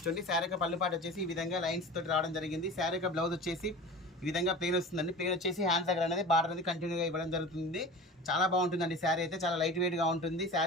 శారీ యొక్క పళ్ళు పాటు వచ్చేసి ఈ విధంగా లైన్స్ తోటి రావడం జరిగింది. శారీ యొక్క బ్లౌజ్ వచ్చేసి ఈ విధంగా ప్లెయిన్ వస్తుందండి. ప్లెయిన్ వచ్చేసి హ్యాండ్స్ దగ్గర అనేది బార్డర్ అనేది కంటిన్యూగా ఇవ్వడం జరుగుతుంది. చాలా బాగుంటుందండి. శారీ అయితే చాలా లైట్ వెయిట్గా ఉంటుంది.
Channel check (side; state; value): both; normal; correlation 0.36